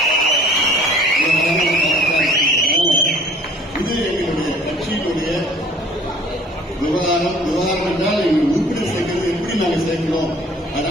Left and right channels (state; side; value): normal; both; correlation 0.53